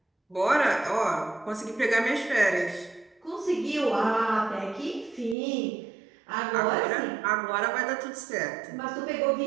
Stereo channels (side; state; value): left; drops out; at 5.4 s